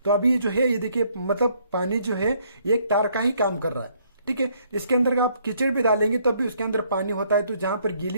तो अभी जो है ये देखिए, मतलब पानी जो है एक तार का ही काम कर रहा है, ठीक है। इसके अंदर आप कीचड़ भी डालेंगे तब भी उसके अंदर पानी होता है, तो जहां पर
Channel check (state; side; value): inverted; both; correlation -0.67